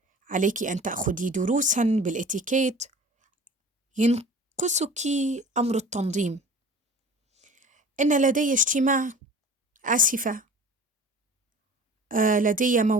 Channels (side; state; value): both; normal; correlation 0.42